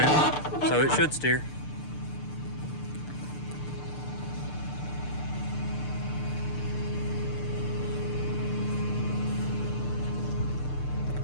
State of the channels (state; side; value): late; right; 6.7 ms